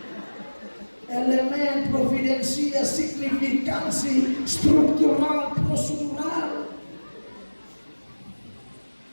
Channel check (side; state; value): both; inverted; correlation -1.00